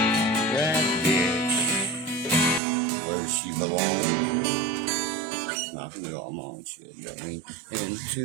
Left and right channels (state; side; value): drops out; left; at 2.6 s